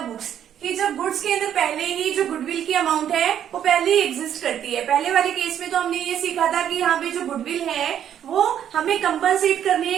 books, कि जब गुड्स के अंदर पहले ही जो गुडविल की अमाउंट है वो पहले ही एग्जिस्ट करती है। पहले वाले केस में तो हमने ये सीखा था कि यहाँ पे जो गुडविल है वो हमें कंपनसेट करनी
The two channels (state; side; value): quieter; left; 9.9 dB